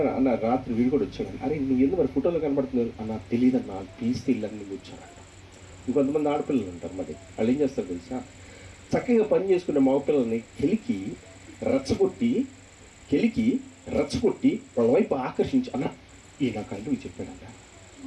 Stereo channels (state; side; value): identical; both; correlation 1.00